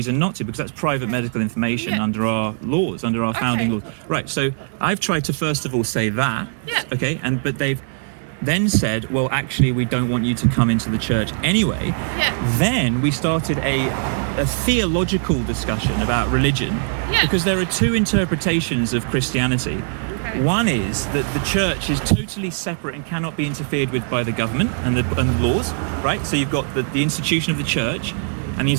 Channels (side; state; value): left; silent; digital silence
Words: not to, because that's private medical information under our laws, under our founding laws. Right, so I've tried to first of all say that, okay, but they've then said, well, actually, we don't want you to come into the church anyway. Then we started a theological discussion about religion, because there are two interpretations of Christianity. One is that the church is totally separate and cannot be interfered with by the government and the laws, right? So you've got the institution of the church and the